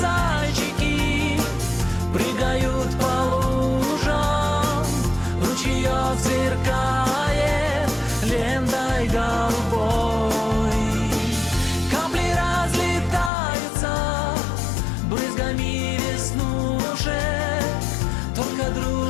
прыгают по лужам, ручеёк сверкает лентой голубой. Капли разлетаются брызгами веснушек, только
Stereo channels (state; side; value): drops out; right; at 13.3 s